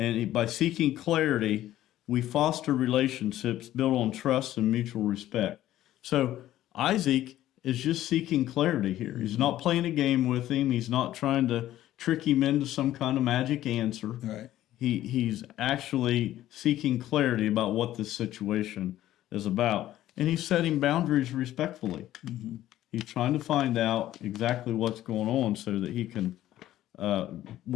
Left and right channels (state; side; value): quieter; right; 13.6 dB